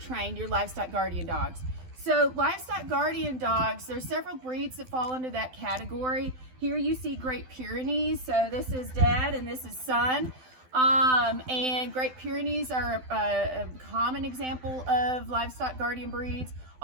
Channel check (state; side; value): late; left; 12 ms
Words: your livestock guardian dogs. So livestock guardian dogs, there's several breeds that fall into that category. Here you see Great Pyrenees. So this is dad and this is son. And Great Pyrenees are a common example of livestock guardian breeds.